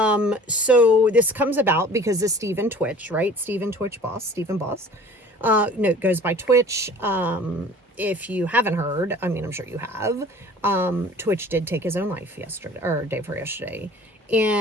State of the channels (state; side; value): normal; both; correlation 0.47